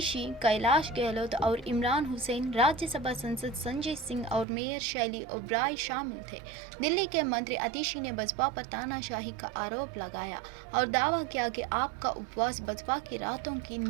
कैलाश गहलोत और इमरान हुसैन, राज्यसभा सांसद संजय सिंह और मेयर शैली ओबराय शामिल थे। दिल्ली के मंत्री आतिशी ने बसपा पर तानाशाही का आरोप लगाया और दावा किया कि आपका उपवास बसपा की रातों की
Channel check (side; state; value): left; drops out; at 4.5 s